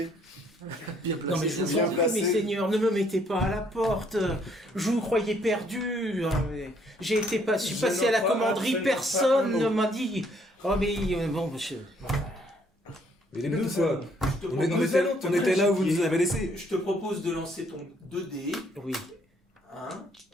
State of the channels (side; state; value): both; normal; correlation 0.66